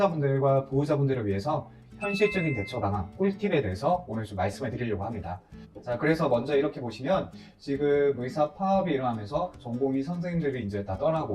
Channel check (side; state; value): both; identical; correlation 1.00